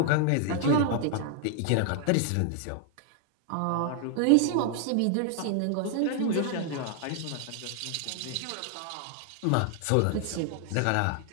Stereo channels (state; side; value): different; both; correlation 0.00